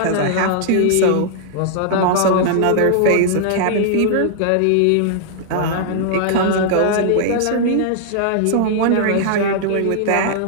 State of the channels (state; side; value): different; both; correlation -0.01